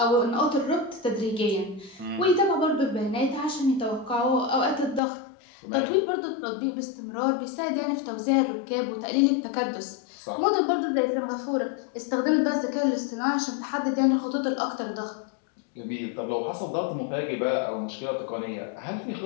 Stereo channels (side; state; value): right; drops out; at 5.0 s